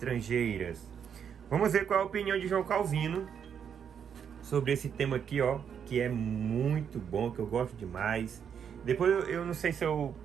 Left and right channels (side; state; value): left; quieter; 7.8 dB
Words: Vamos ver qual é a opinião de João Calvino sobre esse tema aqui, ó, que é muito bom, que eu gosto demais. Depois eu não sei se eu